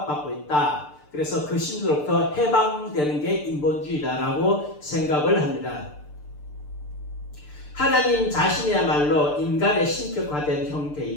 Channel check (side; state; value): right; late; 6.7 ms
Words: 있다. 그래서 그 신으로부터 해방되는 게 인본주의다라고 생각을 합니다. 하나님 자신이야말로 인간의 신격화된